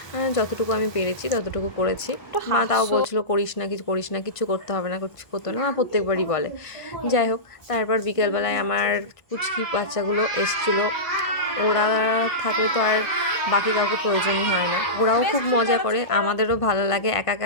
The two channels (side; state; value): right; late; 1.5 ms